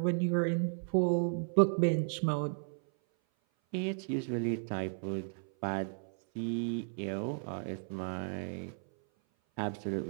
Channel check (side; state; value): left; silent; 55 dB below the other